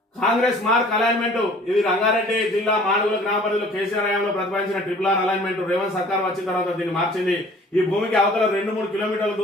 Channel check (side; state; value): both; normal; correlation 0.51